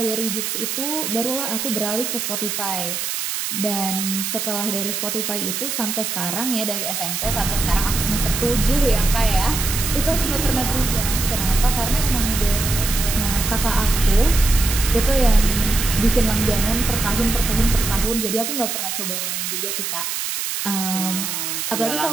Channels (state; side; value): noise; right; hiss, 3 dB below the sound